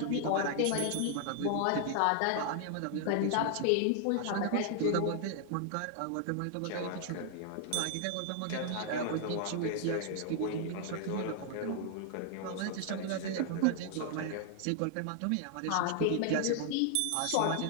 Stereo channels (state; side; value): different; both; correlation 0.00